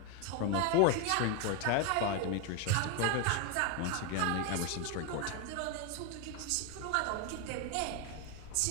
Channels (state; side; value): different; both; correlation 0.01